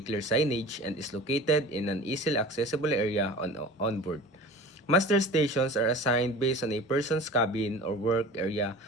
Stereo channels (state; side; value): normal; both; correlation 0.38